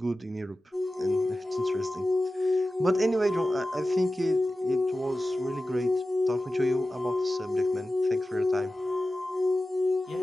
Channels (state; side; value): normal; both; correlation 0.94